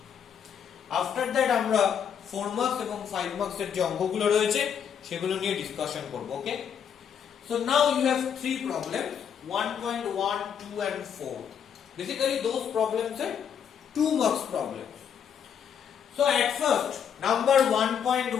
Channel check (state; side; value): quieter; right; 8.0 dB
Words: আফটার দ্যাট আমরা 4 মার্কস এবং 5 মার্কসের যে অঙ্কগুলো রয়েছে সেগুলো নিয়ে ডিসকাশন করব। ওকে, so now you have 3 problems, 1.1, 2 and 4. Basically those problems are 2 marks problems. So at first, number